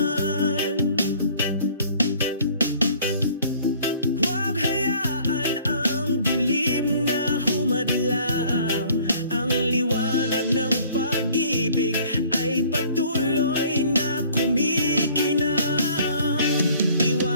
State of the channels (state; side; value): inverted; both; correlation -0.55